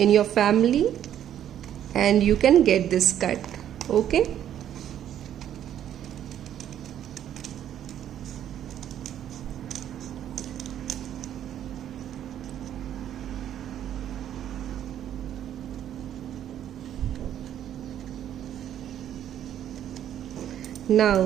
your family and you can get this cut. Okay? Now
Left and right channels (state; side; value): quieter; left; 10.6 dB